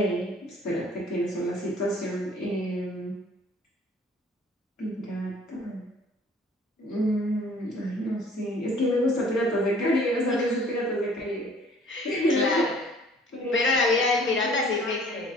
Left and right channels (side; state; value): both; normal; correlation 0.54